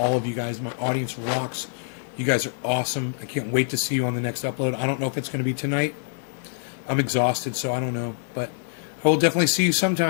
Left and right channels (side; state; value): right; silent; digital silence